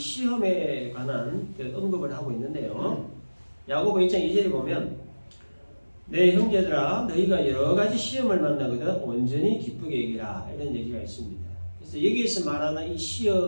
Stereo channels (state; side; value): inverted; both; correlation -1.00